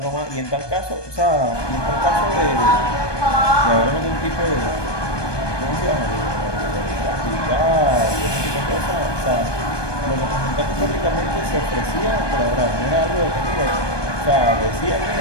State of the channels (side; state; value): right; late; 1.2 ms